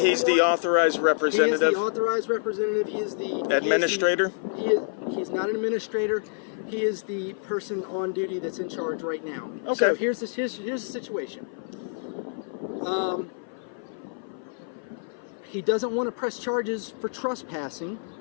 the authorized representative? He is the authorized representative. He is the... Administrator? He's not an administrator. He is the person on duty that's in charge right now. Okay. So here's the situation. He doesn't want to press charges for trespassing,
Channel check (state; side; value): silent; right; 55 dB below the other